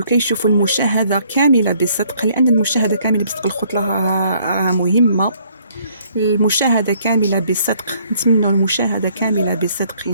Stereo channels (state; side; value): inverted; both; correlation -0.64